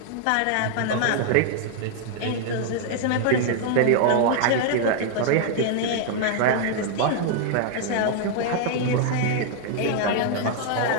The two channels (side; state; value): both; different; correlation 0.00